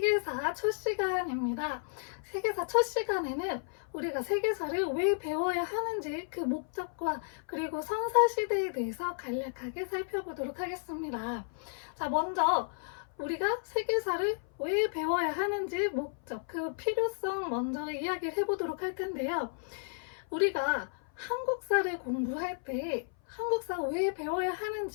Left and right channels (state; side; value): silent; right; 56 dB below the other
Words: 첫 시간입니다. 세계사 첫 시간에는 우리가 세계사를 왜 배워야 하는지 그 목적과 그리고 선사시대에 대해서 간략하게 살펴보도록 하겠습니다. 자, 먼저 우리가 세계사를 왜 배워야 하는지 목적, 그 필요성 먼저 이야기를 해보도록 할 텐데요. 우리가 한국사를 공부할 때 한국사 왜 배워야